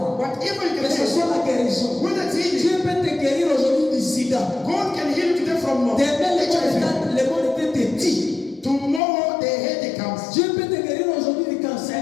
whatever you que can ce say, soit la guérison. whether it's healing, Dieu peut te guérir aujourd'hui du sida. God can heal you today from Demain, HIV. le monde était petit. Tomorrow the headache comes. Dieu peut te guérir aujourd'hui du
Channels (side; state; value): right; drops out; at 9.0 s